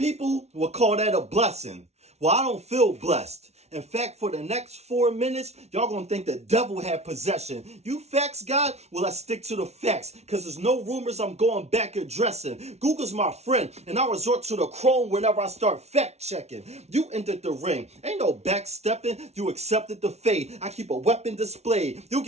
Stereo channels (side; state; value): left; late; 0.31 ms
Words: will call that a blessing. Well, I don't feel blessed. In fact, for the next 4 minutes, y'all gonna think the devil had possession. You facts, God? Well, let's stick to the facts, because there's no rumors I'm going back addressing. Google's my friend, and I resort to the chrome whenever I start fact-checking. You entered the ring. Ain't no backstepping. You accepted the fate. I keep a weapon displayed. You